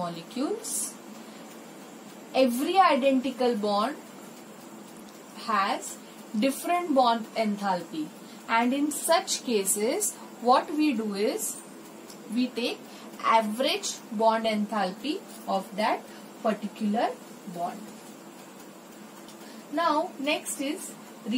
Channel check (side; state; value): both; identical; correlation 1.00